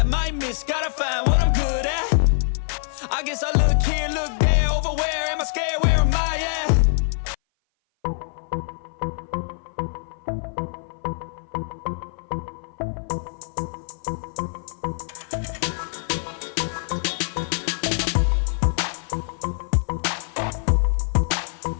might miss, gotta find what I'm good at. I guess I look here, look there, over where am I scared, where am I at?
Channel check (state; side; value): silent; right; 57 dB below the other